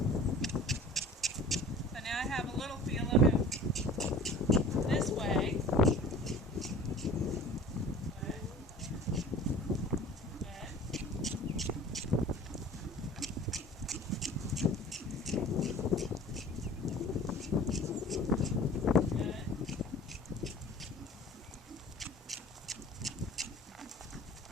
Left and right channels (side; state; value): both; normal; correlation 0.44